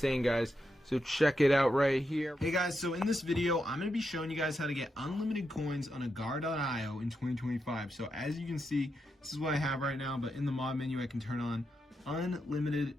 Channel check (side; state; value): both; normal; correlation 0.85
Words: guys. So check it out right here. Hey guys, so in this video, I'm going to be showing you guys how to get unlimited coins on Agar.io in 2025. So as you can see, this is what I have right now, but in the mod menu, I can turn on